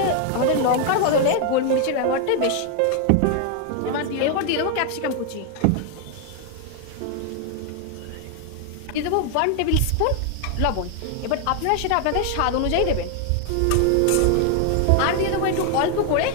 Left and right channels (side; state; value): both; different; correlation 0.00